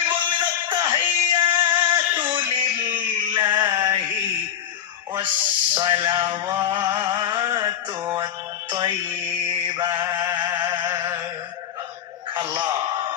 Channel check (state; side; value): quieter; right; 9.7 dB